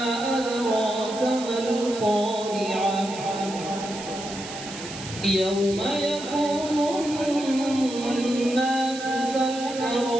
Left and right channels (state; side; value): noise; right; hiss, 12 dB below the sound